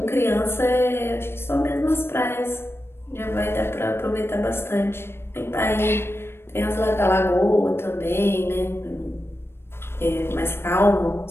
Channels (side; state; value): right; late; 0.12 ms